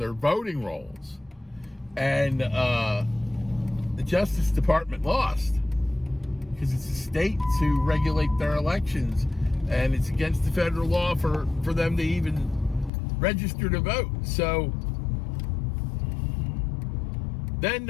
voting rolls. And the Justice Department lost because it's a state to regulate their elections, and it's against the federal law for them to even register to vote. So then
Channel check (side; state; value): right; drops out; at 12.9 s